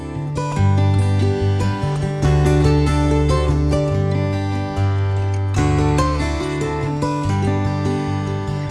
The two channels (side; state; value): both; identical; correlation 1.00